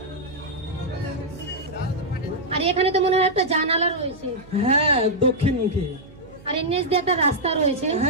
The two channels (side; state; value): right; noise; hum, 21 dB below the sound